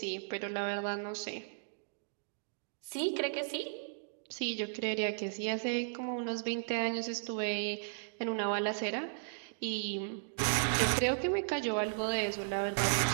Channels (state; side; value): silent; left; digital silence